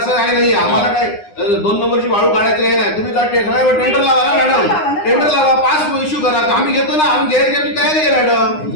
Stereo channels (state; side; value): late; right; 9.8 ms